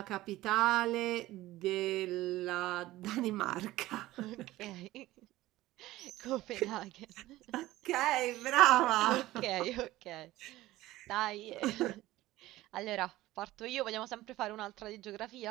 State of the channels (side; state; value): left; quieter; 16.8 dB